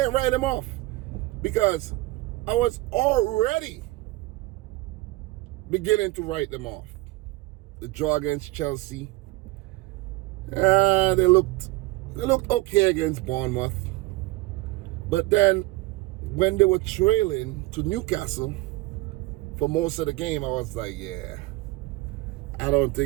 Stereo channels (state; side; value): quieter; left; 19.9 dB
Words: write them off because I was already beginning to write them off. The draw against Chelsea, they looked okay against Bournemouth. But then when they were trailing to Newcastle for most of the game, I was like, yeah, I don't